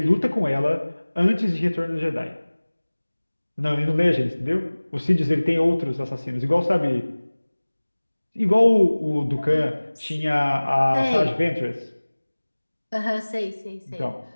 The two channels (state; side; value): inverted; both; correlation -1.00